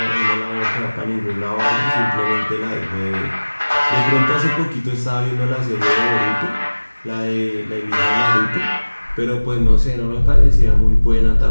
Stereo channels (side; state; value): both; inverted; correlation -1.00